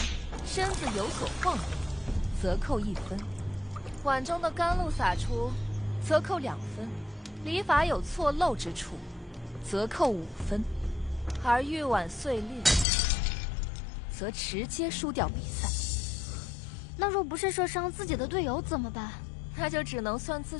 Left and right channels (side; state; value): right; drops out; at 12.9 s